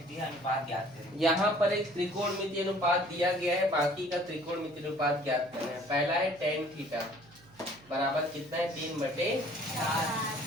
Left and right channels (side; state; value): right; noise; hum, 26 dB below the sound